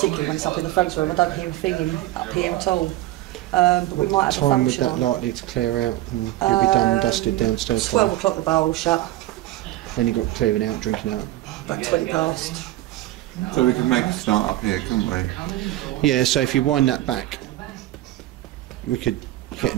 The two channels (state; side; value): quieter; left; 15.7 dB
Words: when it's up in the front room, I don't hear a thing up here at all. But we might What have time a would function that on. likely to clear out and you'll be done and dusted downstairs? 12 o'clock the bar will shut, Then you've got clearing out, drinking out. about 20 past. So we could make a start up here, couldn't we? Yeah, so if you wind that back, we could get